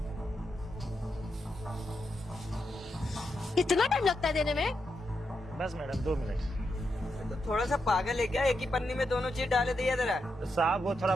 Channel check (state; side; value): normal; both; correlation 0.84